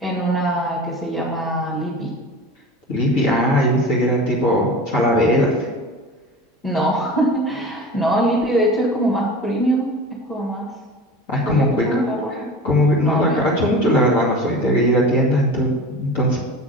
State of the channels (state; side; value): normal; both; correlation 0.35